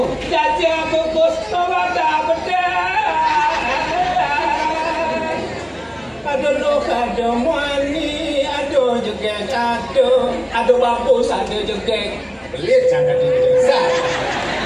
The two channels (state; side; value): identical; both; correlation 1.00